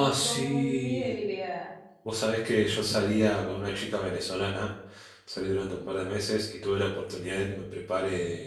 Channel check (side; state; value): both; identical; correlation 1.00